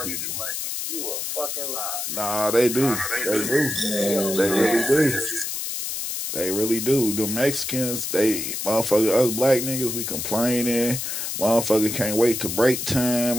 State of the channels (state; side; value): noise; left; hiss, 4 dB below the sound